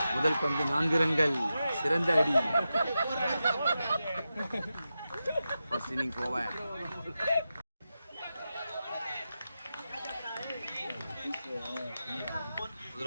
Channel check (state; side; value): inverted; both; correlation -0.91